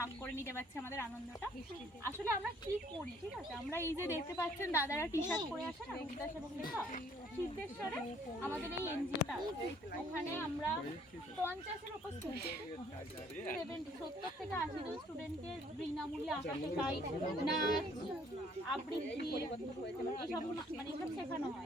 করে নিতে পারছি আমাদের আনন্দটা। আসলে আমরা কি করি ঠিক আছে, আমরা এই যে দেখতে পাচ্ছেন দাদারা টি শার্ট পরে আসে না রবিদাস এবং লেখা সিদ্ধেশ্বরে আমাদের এই এনজিওটা ওখানে আমরা 50-এর উপর স্টুডেন্ট 70 থেকে 80 জন স্টুডেন্টকে বিনামূল্যে আঁকা শেখাই, নাচ আবৃত্তি এসব মানে এসব শেখানো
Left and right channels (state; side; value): normal; both; correlation 0.61